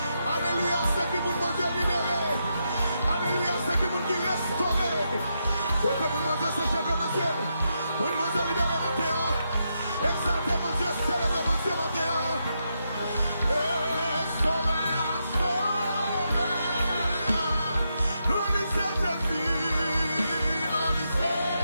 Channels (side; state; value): both; inverted; correlation -0.83